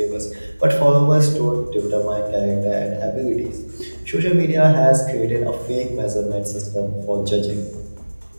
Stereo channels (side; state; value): both; inverted; correlation -1.00